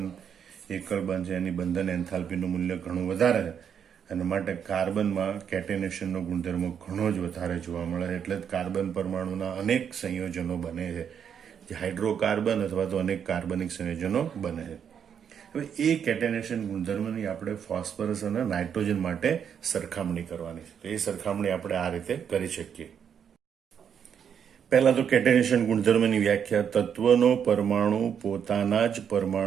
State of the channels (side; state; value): left; quieter; 7.9 dB